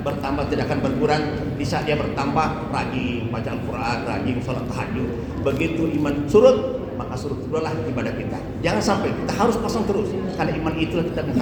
bertambah, tidak akan berkurang. Di saat dia bertambah, rajin baca Al-Quran, rajin sholat tahajud. Begitu iman surut, maka surut itulah ibadah kita. Jangan sampai kita harus pasang terus, karena iman itulah kita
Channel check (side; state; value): both; identical; correlation 1.00